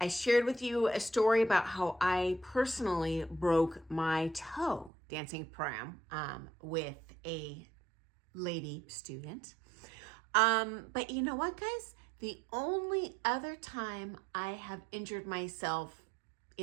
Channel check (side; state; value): left; drops out; at 4.9 s